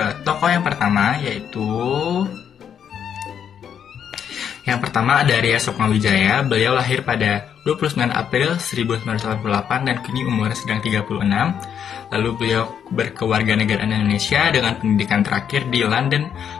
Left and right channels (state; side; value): quieter; right; 8.4 dB